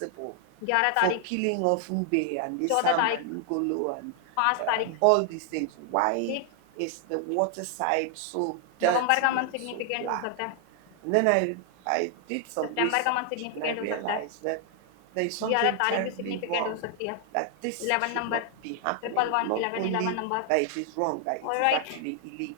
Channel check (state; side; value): different; both; correlation 0.00